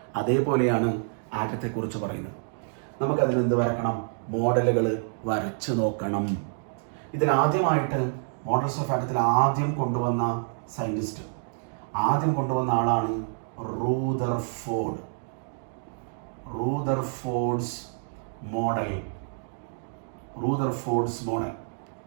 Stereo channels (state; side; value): silent; left; digital silence